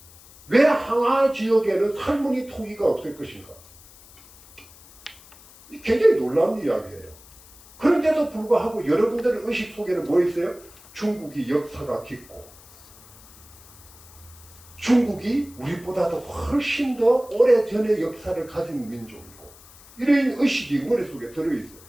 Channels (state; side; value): noise; left; hiss, 23 dB below the sound